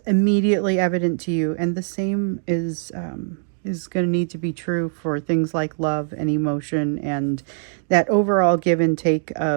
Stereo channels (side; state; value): left; silent; digital silence